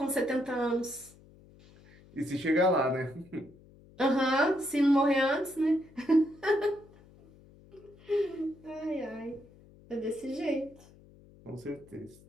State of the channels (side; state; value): left; noise; hum, 25 dB below the sound